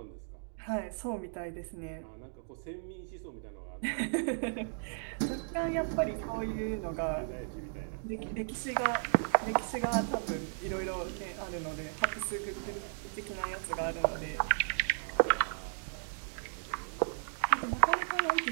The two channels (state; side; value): silent; left; digital silence